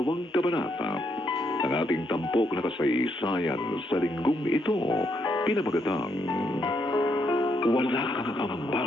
kabanata ng ating tampok na kasaysayan sa linggong ito, pinamagatang Wala Kang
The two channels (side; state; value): both; normal; correlation 0.76